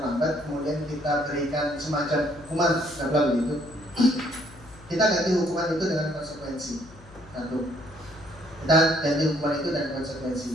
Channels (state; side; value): noise; left; hum, 21 dB below the sound